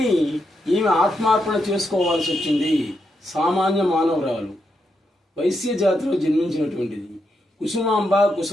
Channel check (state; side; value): normal; both; correlation 0.82